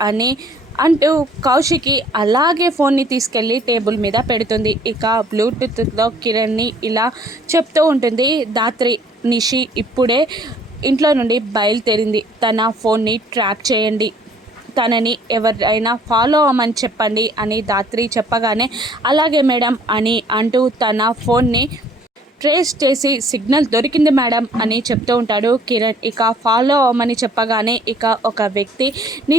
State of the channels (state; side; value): normal; both; correlation 0.57